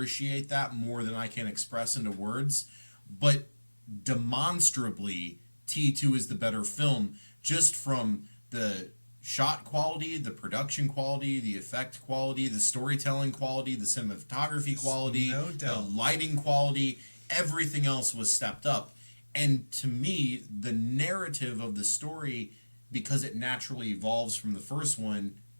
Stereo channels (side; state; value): both; inverted; correlation -1.00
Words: that more than I can express into words. But demonstrably, T2 is the better film just from the shot quality, the production quality, the effect quality, the storytelling quality, the cinematography quality, No the doubt. lighting quality. Everything else was stepped up. And to me, the narrative of the story, because it naturally evolves from the first one,